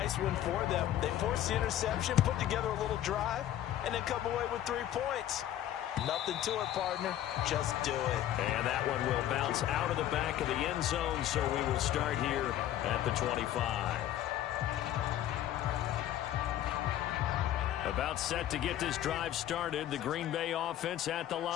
one for them. They forced the interception, put together a little drive, and then come away with 3 points. Nothing to it, partner. Just do it. And that one will bounce out of the back of the end zone, so we will start here at the 25. About set to get this drive started, the Green Bay offense at the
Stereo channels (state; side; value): quieter; right; 12.2 dB